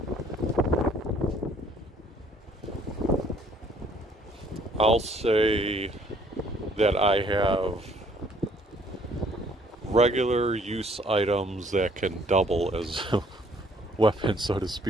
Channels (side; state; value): both; normal; correlation 0.61